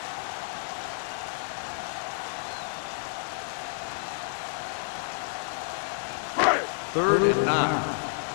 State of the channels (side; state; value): right; silent; 58 dB below the other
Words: Third and 9.